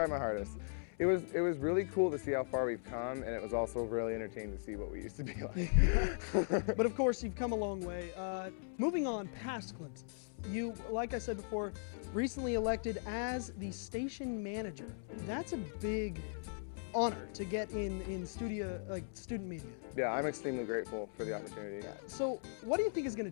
my hardest. It was really cool to see how far we've come, and it was also really entertaining to see what we used to be like. But of course, you've come a long way. Moving on past Glimpses, you, like I said before, recently elected as the station manager. That's a big honor to get in studio, like student media. Yeah, I'm extremely grateful for the opportunity. So, what do you think is going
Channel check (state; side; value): silent; right; 52 dB below the other